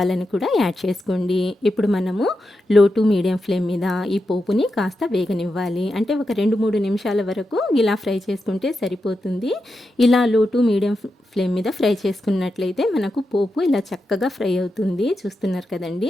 కూడా యాడ్ చేసుకోండి. ఇప్పుడు మనము లో టు మీడియం ఫ్లేమ్ మీద ఈ పోపుని కాస్త వేగనివ్వాలి. అంటే ఒక 2-3 నిమిషాల వరకు ఇలా ఫ్రై చేసుకుంటే సరిపోతుంది. ఇలా లో టు మీడియం ఫ్లేమ్ మీద ఫ్రై చేసుకున్నట్లయితే మనకు పోపు ఇలా చక్కగా ఫ్రై అవుతుంది. చూస్తున్నారు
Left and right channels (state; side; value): normal; both; correlation 0.88